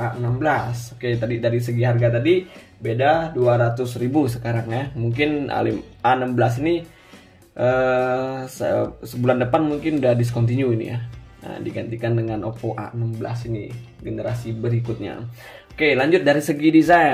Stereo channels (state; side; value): identical; both; correlation 1.00